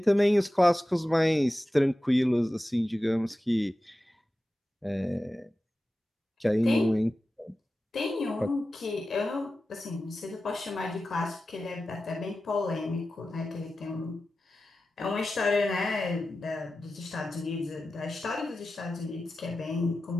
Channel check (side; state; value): both; normal; correlation 0.94